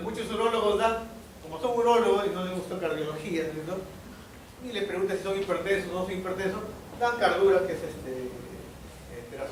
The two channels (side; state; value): both; identical; correlation 1.00